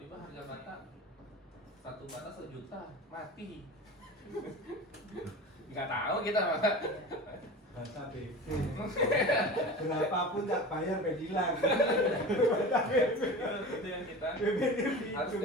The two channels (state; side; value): normal; both; correlation 0.33